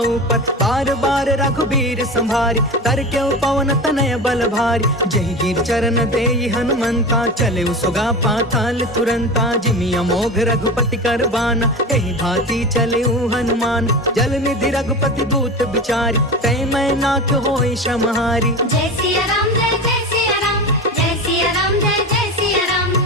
पर। बार बार रघुबीर संभारी, तर के पवन तनय बल भारी। जही गिर चरण देई हनुमंता, चले सुगा पाताल तुरंता। जिमि अमोघ रघुपति कर बाना, एहि भांति चले हनुमान। जल निधि रघुपति दूत बिचारी, तै मैं नाथ होई समहारी। जय सिया राम जय जय सिया राम, जय सिया राम जय जय सिया राम।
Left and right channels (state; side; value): normal; both; correlation 0.28